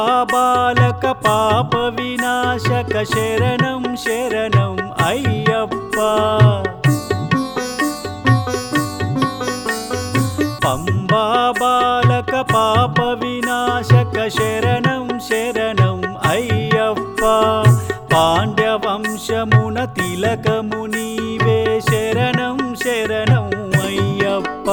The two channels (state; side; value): identical; both; correlation 1.00